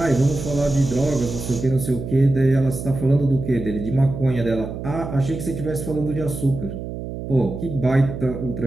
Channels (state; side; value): noise; right; hum, 8 dB below the sound